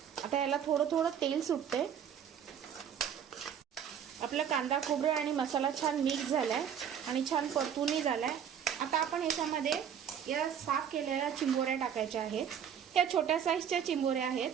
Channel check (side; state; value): left; quieter; 8.5 dB